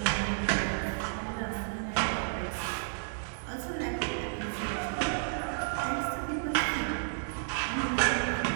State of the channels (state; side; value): silent; left; digital silence